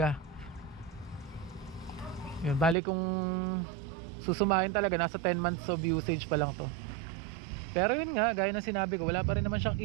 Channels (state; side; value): drops out; left; at 2.8 s